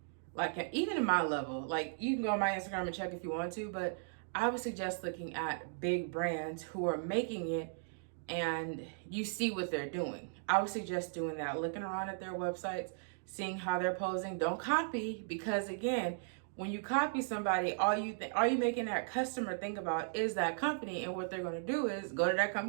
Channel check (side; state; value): left; silent; digital silence